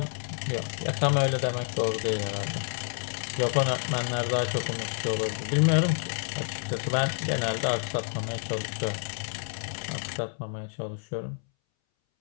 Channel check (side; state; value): right; silent; 59 dB below the other